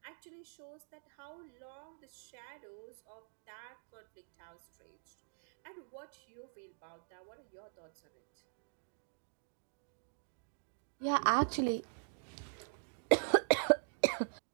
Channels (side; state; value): left; silent; digital silence